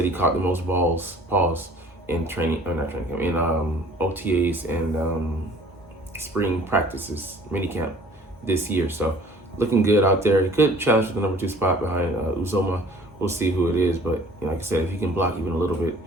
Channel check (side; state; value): both; normal; correlation 0.51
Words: he caught the most balls in OTAs and spring practices, minicamp this year. So looking good out there. He could challenge for the #2 spot behind Uzoma. We'll see who it is, but like I said, if he can block even a little bit,